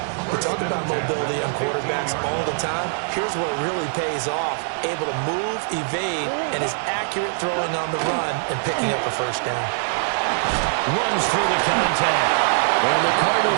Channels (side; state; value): left; silent; digital silence